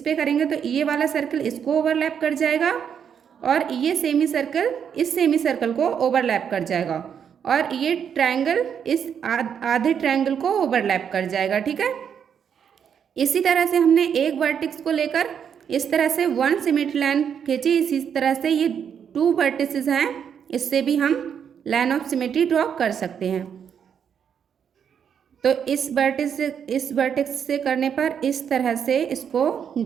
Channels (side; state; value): left; quieter; 7.8 dB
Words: करेंगे तो ये वाला सर्कल इसको ओवरलैप कर जाएगा और ये सेमी सर्कल इस सेमी सर्कल को ओवरलैप कर जाएगा, और ये ट्रायंगल इस आधे ट्रायंगल को ओवरलैप कर जाएगा, ठीक है। इसी तरह से हमने एक वर्टेक्स को लेकर इस तरह से 1 सिमेट्री लाइन खींची, इसी तरह से ये 2 वर्टिसेस हैं, इससे भी हम लाइन ऑफ सिमेट्री ड्रॉ कर सकते हैं। तो इस वर्टेक्स से करने पर इस तरह से इसको